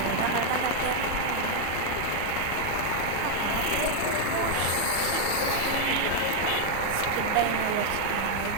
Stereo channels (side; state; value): both; different; correlation 0.00